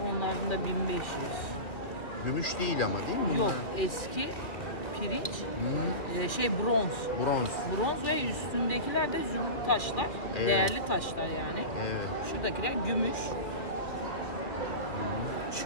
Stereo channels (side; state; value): right; late; 2.4 ms